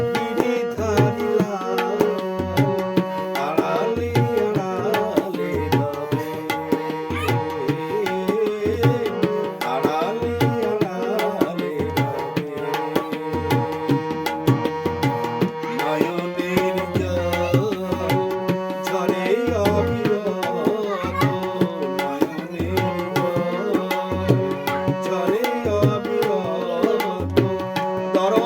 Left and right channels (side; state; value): both; identical; correlation 1.00